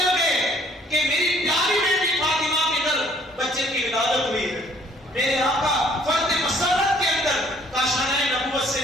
گئے کہ میری پیاری بیٹی فاطمہ کے گھر بچے کی ولادت ہوئی ہے۔ میرے آقا فرد مسرت کے اندر کاشانۂ نبوت سے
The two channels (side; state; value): both; normal; correlation 0.61